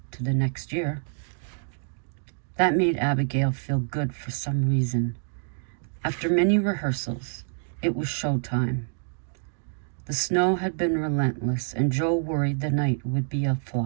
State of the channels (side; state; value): left; silent; 60 dB below the other